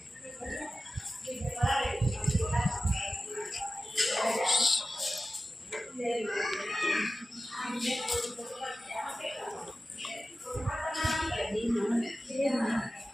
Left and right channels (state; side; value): normal; both; correlation 0.95